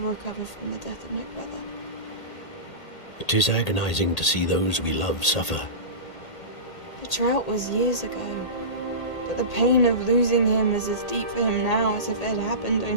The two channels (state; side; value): late; right; 1.8 ms